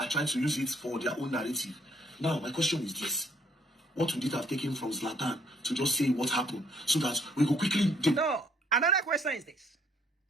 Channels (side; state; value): both; normal; correlation 0.65